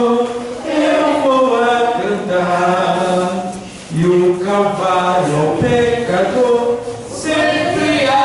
eu vou a cantar, e o Calvário ao pecador sempre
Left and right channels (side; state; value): both; identical; correlation 1.00